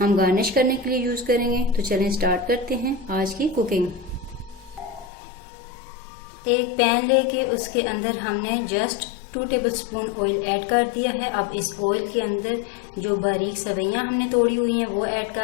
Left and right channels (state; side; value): drops out; right; at 5.1 s